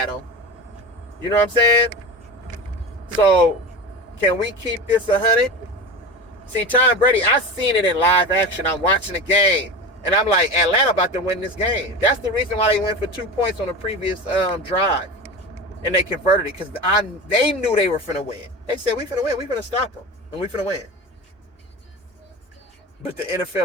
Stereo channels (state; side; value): normal; both; correlation 0.28